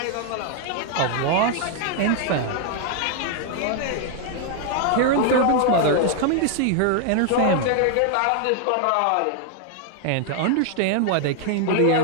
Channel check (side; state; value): both; different; correlation 0.00